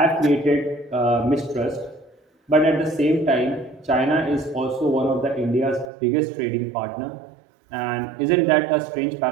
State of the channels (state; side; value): drops out; left; at 5.9 s